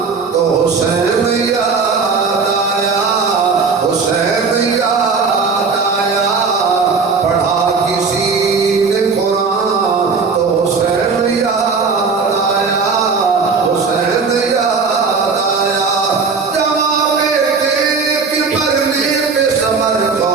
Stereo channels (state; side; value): quieter; left; 4.9 dB